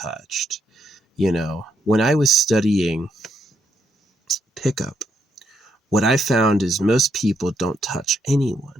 You know, when I was studying pickup, what I found is most people don't touch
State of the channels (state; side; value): normal; both; correlation 0.76